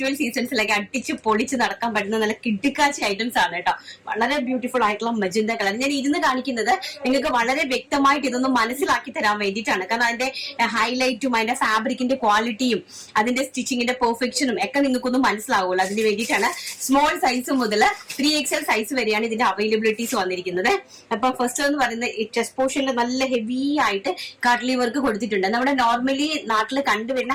സീസൺസിലൊക്കെ അടിച്ച് പൊളിച്ച് നടക്കാൻ പറ്റുന്ന നല്ല കിടുക്കാച്ചി ഐറ്റംസ് ആണ് കേട്ടോ. വളരെ ബ്യൂട്ടിഫുൾ ആയിട്ടുള്ള മജന്ത കളർ. ഞാൻ ഇരുന്ന് കാണിക്കുന്നത് നിങ്ങൾക്ക് വളരെ വ്യക്തമായിട്ട് ഇതൊന്നും മനസ്സിലാക്കി തരാൻ വേണ്ടിയിട്ടാണ്. കാരണം അതിന്റെ ഹൈലൈറ്റും അതിന്റെ ഫാബ്രിക്കിന്റെ ക്വാളിറ്റിയും അതിന്റെ സ്റ്റിച്ചിങ്ങിന്റെ പെർഫെക്ഷനും ഒക്കെ നിങ്ങൾക്കൊന്നും മനസ്സിലാവുള്ളൂ. അതിന് വേണ്ടിയിട്ടാണ് സ്മോൾ സൈസ് മുതൽ 3XL സൈസ് വരെയാണ് ഇതിന്റെ അവൈലബിലിറ്റീസ് വന്നിരിക്കുന്നത്. അപ്പൊ ഫസ്റ്റ് എന്ന് പറയുന്നത് ചെസ്റ്റ് പോർഷനിൽ നല്ല ഹെവി ആയിട്ട് കാട്ട്ലി വർക്ക് കൊടുത്തിട്ടുണ്ട്. നമ്മുടെ നോർമലി നാട്ടിൽ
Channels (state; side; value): identical; both; correlation 1.00